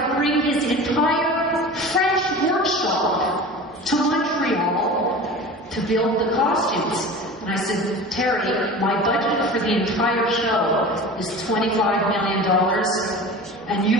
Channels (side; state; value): both; normal; correlation 0.35